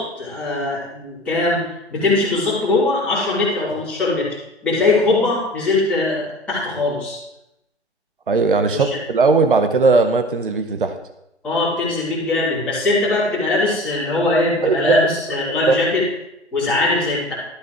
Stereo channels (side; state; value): both; normal; correlation 0.40